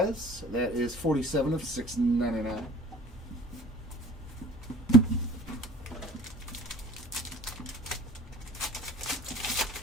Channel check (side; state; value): both; normal; correlation 0.48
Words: That is 47 of 699.